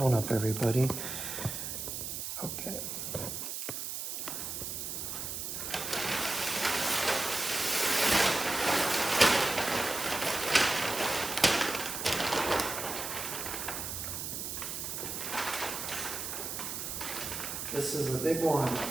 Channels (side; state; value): right; noise; hiss, 5 dB below the sound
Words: up, everybody. Okay. This is a big one.